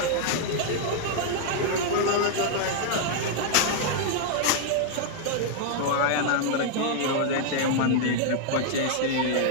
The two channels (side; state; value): both; different; correlation -0.01